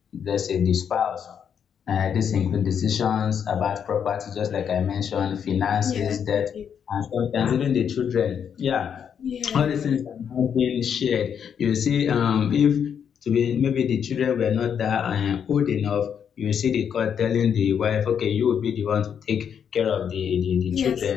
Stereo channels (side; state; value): right; quieter; 7.9 dB